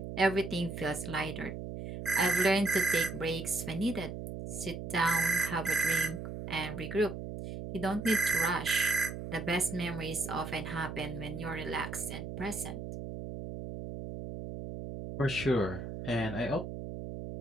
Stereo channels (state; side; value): noise; right; hum, 7 dB below the sound